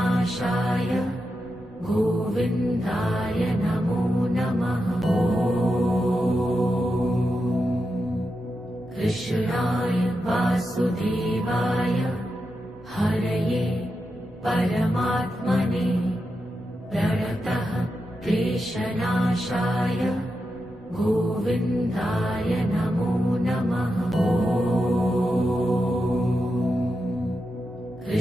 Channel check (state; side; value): normal; both; correlation 0.88